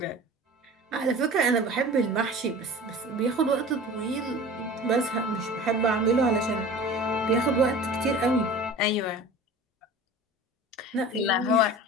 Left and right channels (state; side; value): normal; both; correlation 0.39